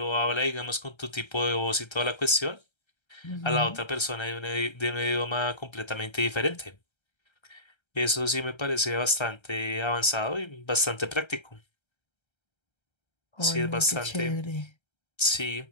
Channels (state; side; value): late; right; 1.3 ms